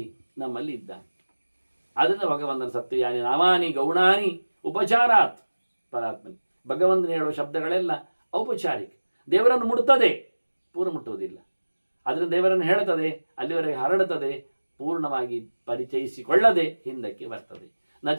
ನಮ್ಮಲ್ಲಿ ಇದ್ದಾನೆ. ಆದ್ದರಿಂದ ಭಗವಂತನ ಸತ್ಯಯಾನಿ ನಾಮಾನಿ ಗೌಣಾನಿ ಉಪಚಾರಾತ್ ಪರಾತ್ಮನಿ. ಭಗವಂತನ ಹೇಳುವ ಶಬ್ದಗಳೆಲ್ಲ ಔಪಚಾರಿಕ, ದೇವರನ್ನು ಮುಟ್ತದೆ, ಪೂರ್ಣ ಮುಟ್ಟುವುದಿಲ್ಲ. ಅದರಿಂದ ದೇವರನ್ನು ಹೇಳುತ್ತದೆ, ಅಲ್ಲಿವರೆಗೆ ಹರಡುತ್ತದೆ, ಪೂರ್ಣವಾಗಿ ಪರಿಚಯಿಸಿಕೊಳ್ಳದೆ ಹಿಂದಕ್ಕೆ ಬರ್ತದೆ. ನ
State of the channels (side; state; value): both; inverted; correlation -1.00